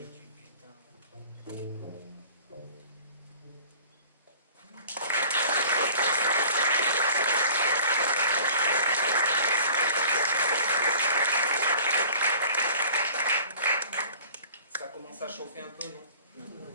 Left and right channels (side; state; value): both; inverted; correlation -0.47